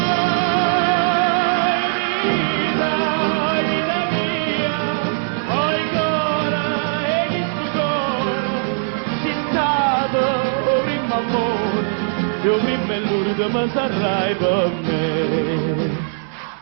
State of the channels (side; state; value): left; silent; digital silence